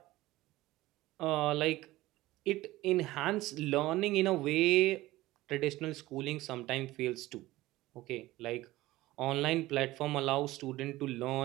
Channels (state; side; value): quieter; left; 17.6 dB